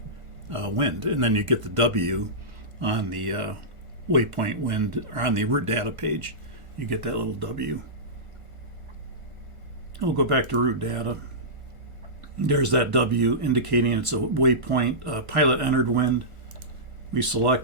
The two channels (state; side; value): late; left; 1.4 ms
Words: wind, and then you get the W on the waypoint wind, or on the route data page. You get that little W. We'll go back to route data. There's that W indicating it's a waypoint pilot entered wind. We